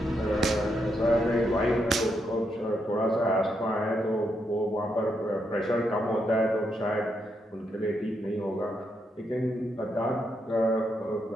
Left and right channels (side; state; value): both; normal; correlation 0.80